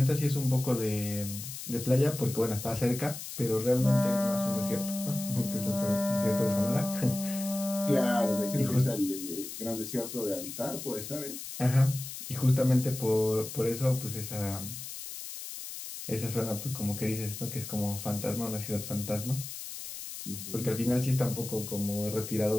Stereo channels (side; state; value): left; noise; hiss, 9 dB below the sound